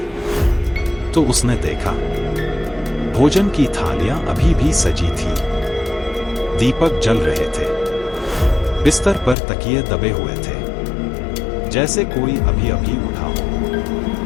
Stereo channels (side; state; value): right; drops out; at 9.3 s